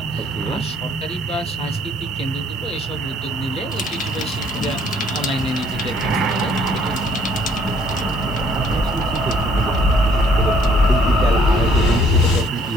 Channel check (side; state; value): both; normal; correlation 0.62